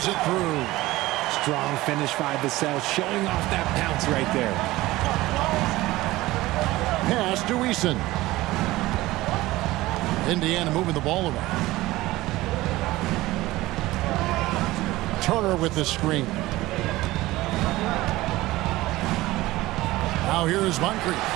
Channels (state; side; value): quieter; left; 18.1 dB